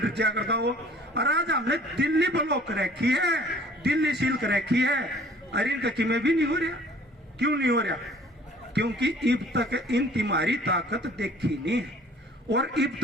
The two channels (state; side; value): normal; both; correlation 0.52